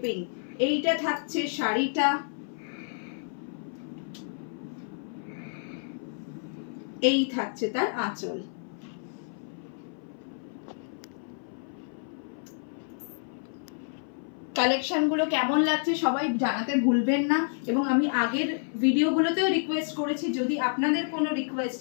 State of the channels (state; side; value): silent; right; 56 dB below the other